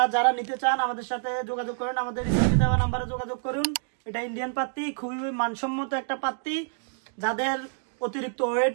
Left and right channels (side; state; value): left; silent; digital silence